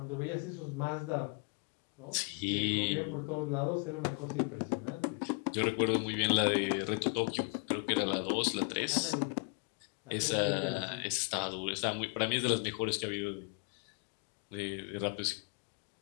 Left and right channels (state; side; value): quieter; right; 36.1 dB